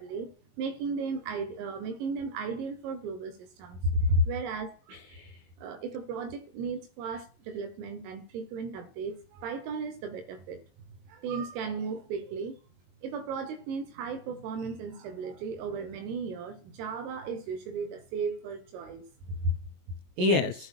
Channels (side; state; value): left; late; 22 ms